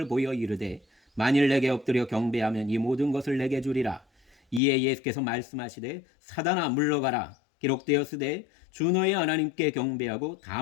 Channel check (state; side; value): drops out; right; at 4.6 s